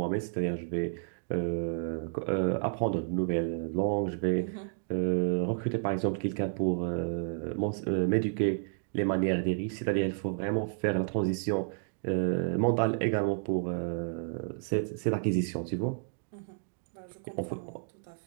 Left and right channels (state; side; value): silent; left; digital silence